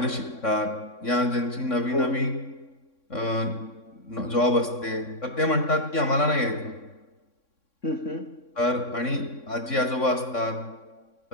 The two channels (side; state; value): right; late; 3.6 ms